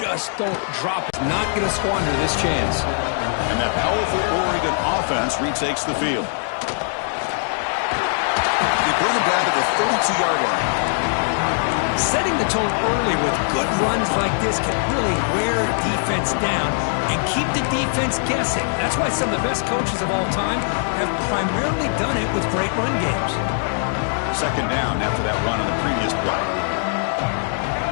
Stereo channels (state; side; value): silent; right; digital silence